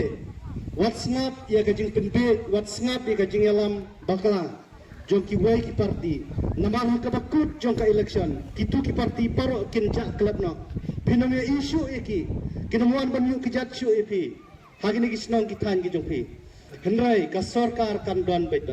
WhatsApp ya kajing penbe WhatsApp ya kajing alam bakla jong ki wai ki parti namang ka bakut jong ka election kitu ki parti paro kinja club no pinamya isu eki kinamuan banyu kijat su epi hagini kisnong kitan ki jong pi hendrai ka sarkar kan don bait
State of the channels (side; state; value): both; identical; correlation 1.00